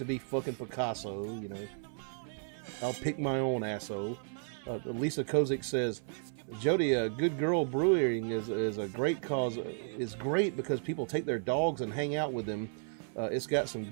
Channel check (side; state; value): left; silent; 55 dB below the other